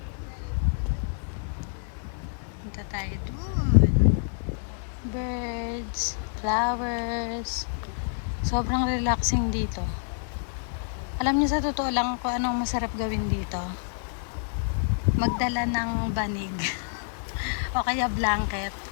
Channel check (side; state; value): right; silent; digital silence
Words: Punta tayo dun. Birds, flowers. Sobrang relaxing dito. Alam niyo sa totoo lang kung anong masarap gawin dito. Magdala ng banig. O kaya blanket.